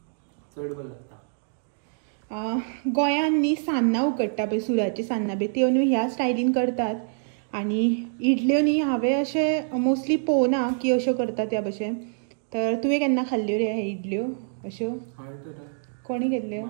चड बरें लागता. गोंयान न्ही सान्नां उकडटा पळय सुराची सान्नां बी त्यो न्ही ह्या स्टायलीन करतात. आनी इडल्यो न्ही हांवें अशें मोस्टली पळोवना की अश्यो करतात त्या भशेन. तर तुवें केन्ना खाल्ल्यो रे हे इडल्यो अश्यो? कोणी केल्ल्यो?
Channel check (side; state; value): left; silent; digital silence